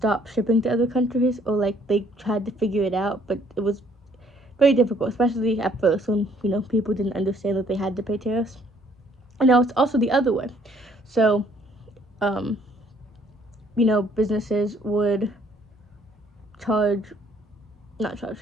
shipping to other countries, or like they tried to figure it out, but it was very difficult, especially at first when people didn't understand that they had to pay tariffs. And now it's also the other way. So, um, businesses would charge, not charge,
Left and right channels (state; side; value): normal; both; correlation 0.62